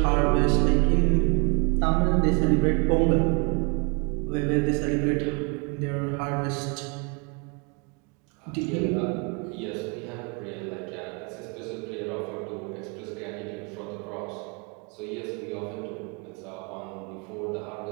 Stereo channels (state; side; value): quieter; left; 32.8 dB